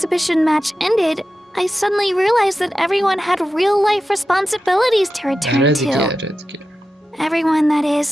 match ended, I suddenly realized that everyone had real-life responsibilities to آره return دیگه to. آره دیگه. Everyone, that is,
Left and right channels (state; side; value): normal; both; correlation 0.92